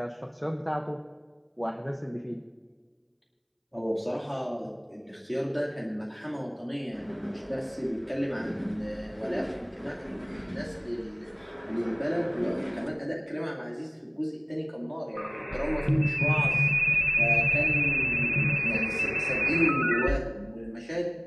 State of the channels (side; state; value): both; identical; correlation 1.00